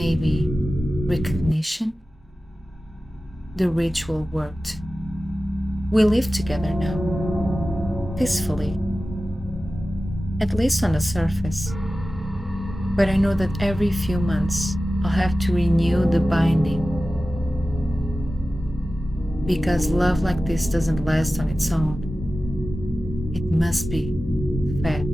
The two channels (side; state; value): both; normal; correlation 0.95